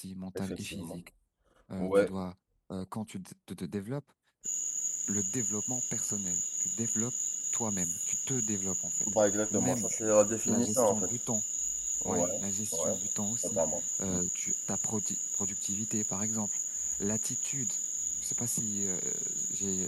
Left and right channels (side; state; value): both; identical; correlation 1.00